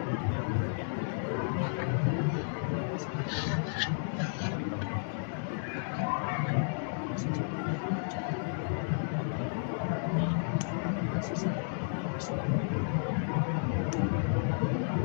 dengan mungkin kekurangan yang kita dapatkan dari pasangan kita. Tapi kalau membutuhkan ibadah, maka sejatinya kalau cintanya berkurang, Allah yang menambahi. Kalau kasih sayang yang menipis, Allah yang menambahkan.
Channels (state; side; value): silent; right; digital silence